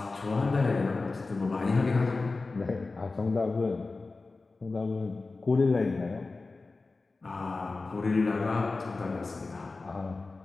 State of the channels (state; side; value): quieter; right; 3.7 dB